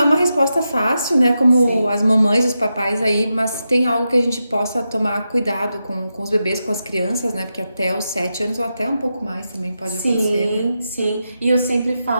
uma resposta fácil, né? Como Sim. as mamães, os papais aí, mas tem algo que a gente possa tomar cuidado com os bebês, com as crianças, né? Porque até os 7 anos ou até um pouco mais também pode acontecer, né? Sim. E eu sempre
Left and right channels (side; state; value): both; inverted; correlation -0.88